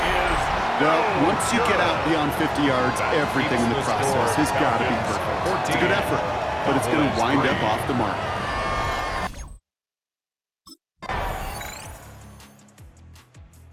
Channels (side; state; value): both; identical; correlation 1.00